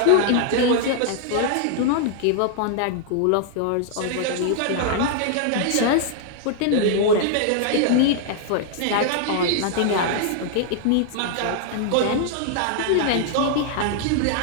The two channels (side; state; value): both; different; correlation 0.00